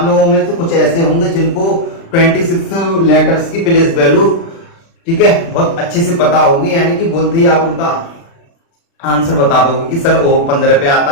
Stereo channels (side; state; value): right; late; 36 ms